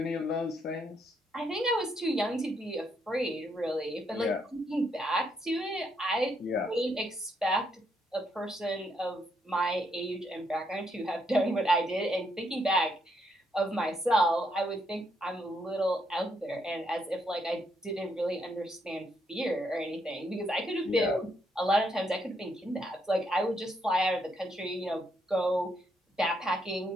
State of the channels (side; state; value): both; normal; correlation 0.76